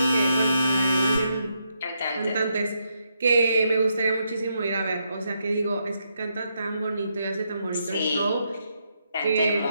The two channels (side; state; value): both; inverted; correlation -0.80